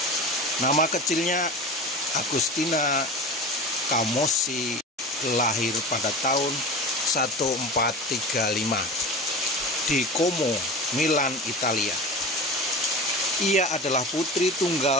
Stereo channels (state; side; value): normal; both; correlation 0.32